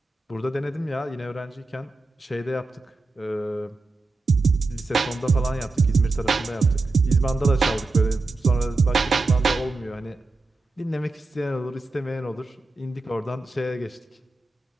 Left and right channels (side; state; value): left; quieter; 3.3 dB